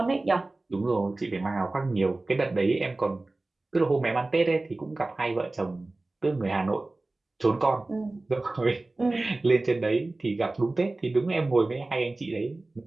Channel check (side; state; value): left; quieter; 3.0 dB